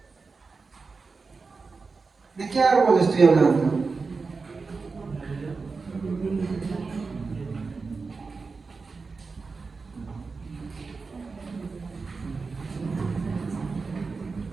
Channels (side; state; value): left; quieter; 4.4 dB